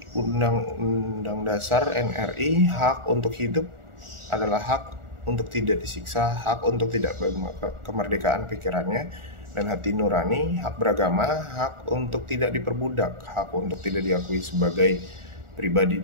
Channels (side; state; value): left; late; 1.4 ms